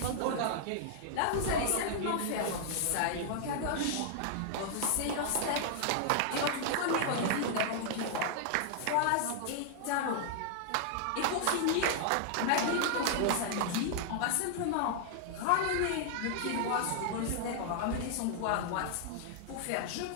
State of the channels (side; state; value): both; different; correlation -0.01